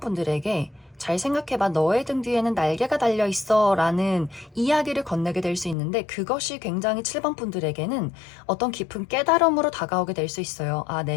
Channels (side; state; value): right; drops out; at 5.8 s